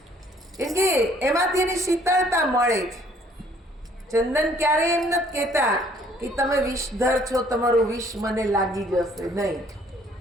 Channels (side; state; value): both; normal; correlation 0.60